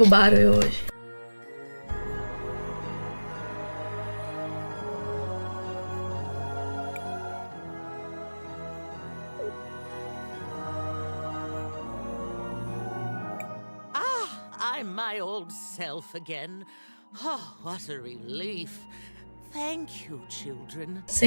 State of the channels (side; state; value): both; inverted; correlation -1.00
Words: eu hoje. I'm my old self again. Oh, what a relief. Thank you, children.